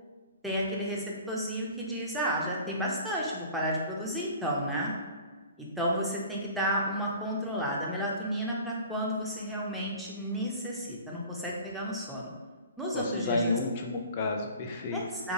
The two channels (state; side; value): inverted; both; correlation -0.42